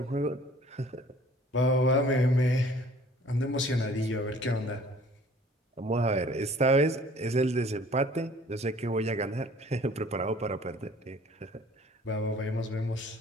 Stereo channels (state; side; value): normal; both; correlation 0.53